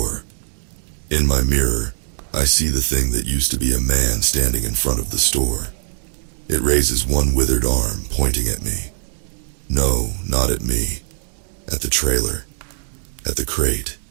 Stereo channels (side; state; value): left; silent; 65 dB below the other